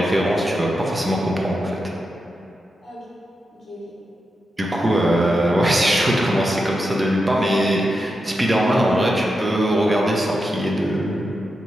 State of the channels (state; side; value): normal; both; correlation 0.88